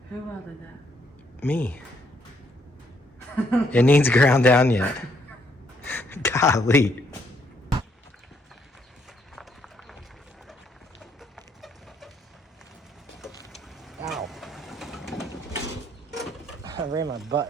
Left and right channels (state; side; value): normal; both; correlation 0.71